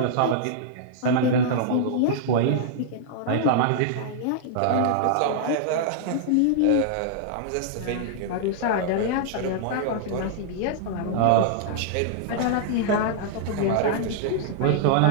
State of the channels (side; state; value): both; different; correlation -0.01